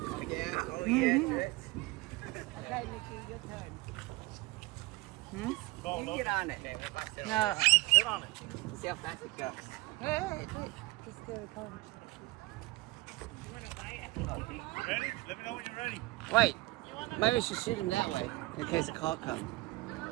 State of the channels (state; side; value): quieter; left; 21.0 dB